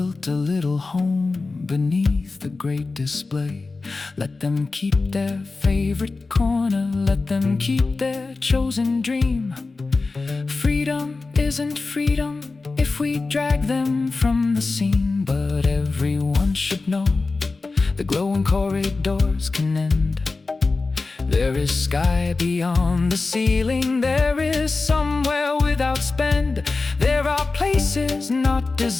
a little home beneath the great display. Let them keep their favorite corner. Let them keep their chosen dream. Freedom isn't freedom if we drag them from the scene, but everyone should know the glowing corridors can end. There is sky beyond the ceiling. There is somewhere without spend. There are places not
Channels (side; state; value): right; quieter; 3.8 dB